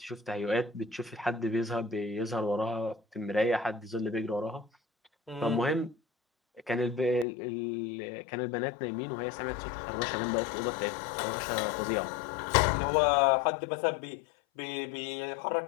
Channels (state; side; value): drops out; right; at 7.2 s